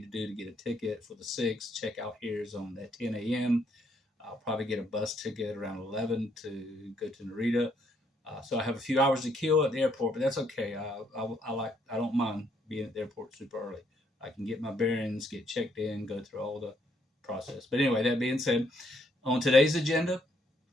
to do to get a ticket for the 6th. Checkout here is on at 10 a.m. I'll probably get a bus ticket around 11 to go to Narita. So I have a few hours to kill at the airport, but that's okay. I don't mind being at the airport super early. I can get my bearings, get checked in, go through all the process. But anyway, that being said, on today's agenda,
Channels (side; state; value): both; normal; correlation 0.71